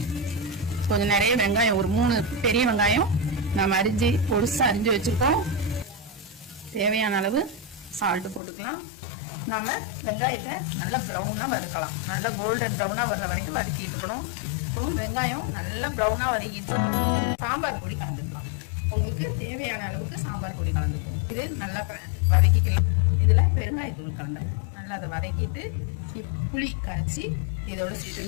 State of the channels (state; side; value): drops out; right; at 8.4 s